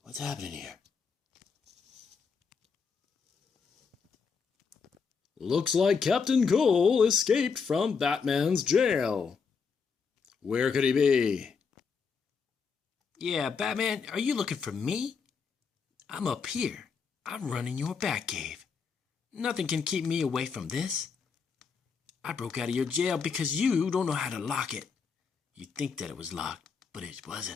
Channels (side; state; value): right; quieter; 5.6 dB